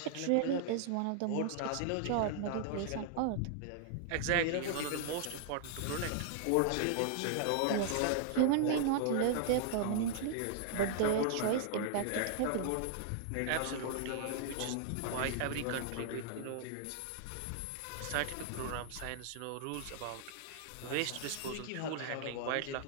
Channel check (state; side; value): different; both; correlation 0.00